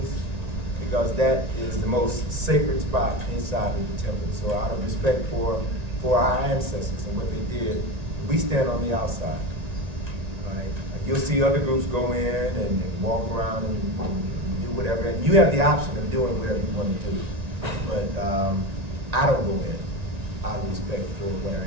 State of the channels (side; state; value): left; late; 1.9 ms